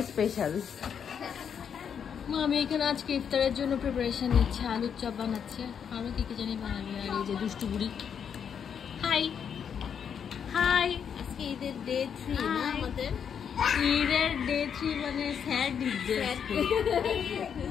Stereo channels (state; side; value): quieter; right; 7.6 dB